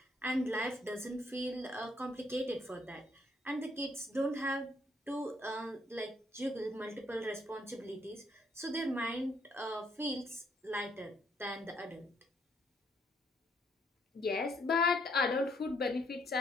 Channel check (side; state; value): both; normal; correlation 0.70